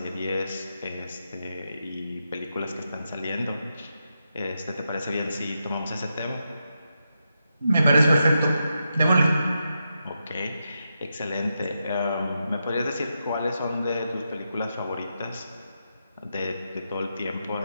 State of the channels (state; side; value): inverted; both; correlation -0.86